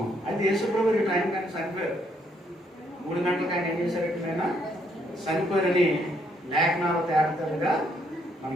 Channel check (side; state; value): both; normal; correlation 0.71